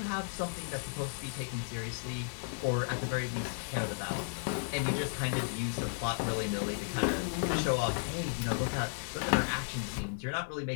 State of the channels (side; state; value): right; silent; digital silence